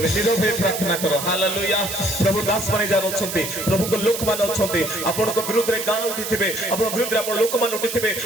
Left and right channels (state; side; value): noise; right; hiss, 6 dB below the sound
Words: नीरव हे प्रार्थना करो हालेलुया प्रभु दास माने जान अछंती प्रभु को लोक मान अछंती आपण को विरुद्ध रे गां उठिथिबे आपण विरुद्ध रे आपण लोक मान उठिथिबे